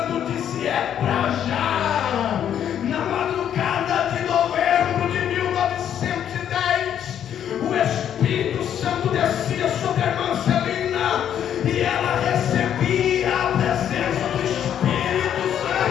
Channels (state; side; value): quieter; right; 9.7 dB